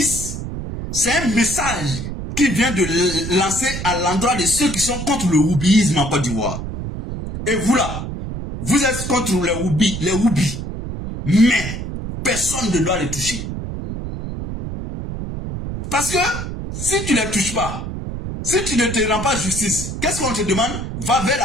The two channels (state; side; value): noise; right; rumble, 6 dB below the sound